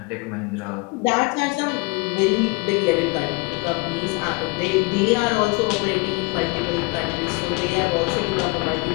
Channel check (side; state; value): right; quieter; 28.3 dB